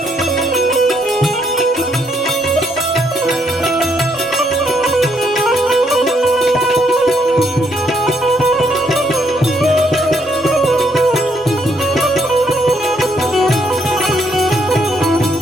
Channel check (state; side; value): normal; both; correlation 0.72